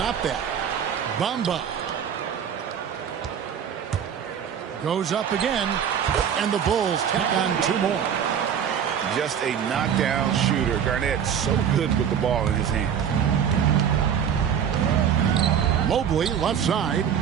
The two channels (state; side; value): quieter; left; 8.3 dB